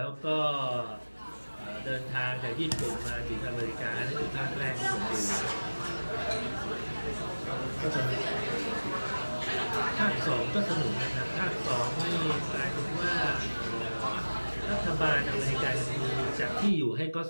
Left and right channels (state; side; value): inverted; both; correlation -1.00